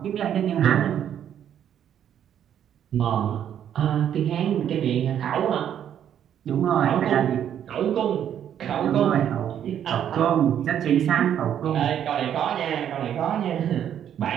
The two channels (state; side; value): quieter; left; 9.7 dB